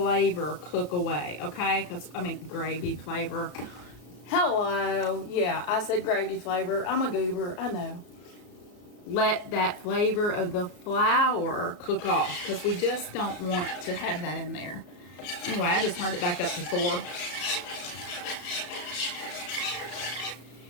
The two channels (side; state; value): right; late; 33 ms